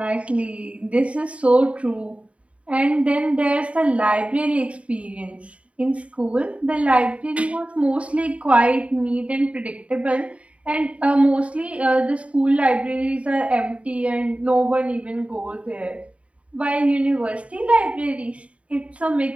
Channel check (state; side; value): late; left; 0.064 ms